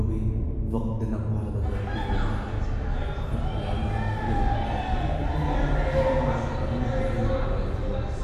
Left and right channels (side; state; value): both; identical; correlation 1.00